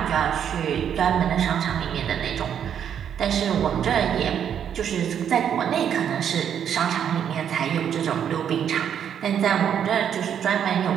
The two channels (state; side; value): quieter; left; 8.8 dB